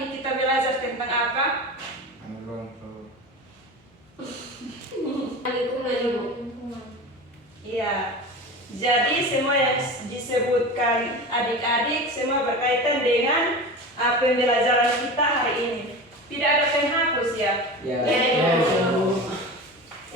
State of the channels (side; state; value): both; normal; correlation 0.30